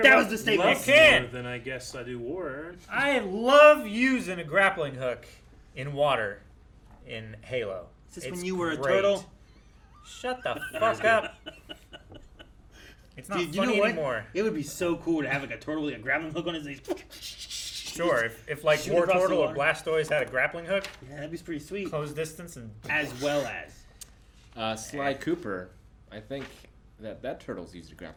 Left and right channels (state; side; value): identical; both; correlation 1.00